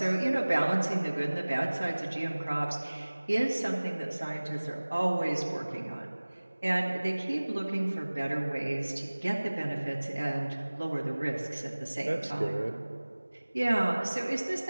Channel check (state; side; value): inverted; both; correlation -1.00